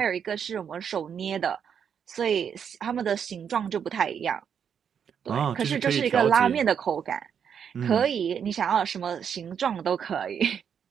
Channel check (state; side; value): quieter; left; 7.7 dB